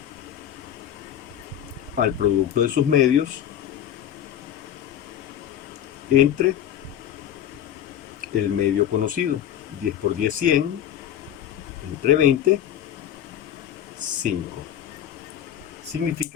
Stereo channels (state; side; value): quieter; right; 10.5 dB